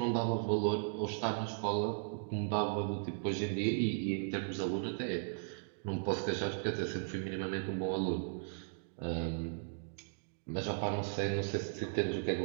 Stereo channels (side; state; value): left; silent; digital silence